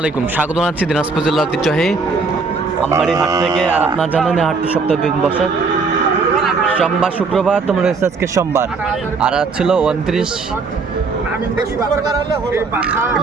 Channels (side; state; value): left; quieter; 4.4 dB